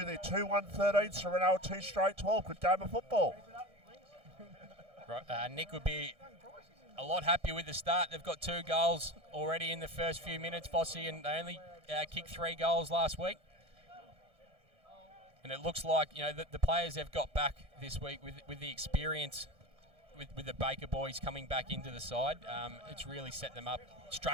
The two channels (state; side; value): late; left; 1.6 ms